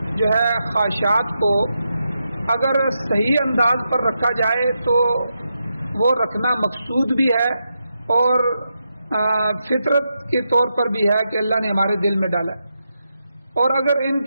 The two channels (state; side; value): inverted; both; correlation -0.85